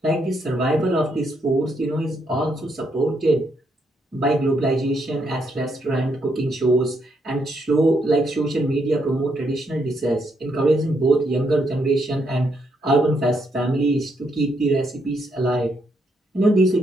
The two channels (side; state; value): both; normal; correlation 0.76